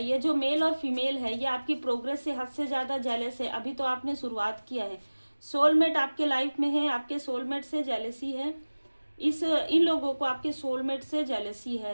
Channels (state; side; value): inverted; both; correlation -1.00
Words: ये जो मेल और फीमेल है, ये आपकी प्रोग्रेस से हद से ज़्यादा जेलस है। अभी तो आपने शुरुआत किया है। सोलमेट आपके लाइफ में है, आपके सोलमेट से जेलसी है। इन लोगों को आपके सोलमेट से जेलसी